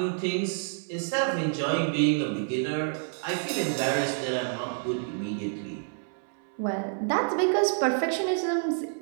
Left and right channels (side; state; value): left; silent; 59 dB below the other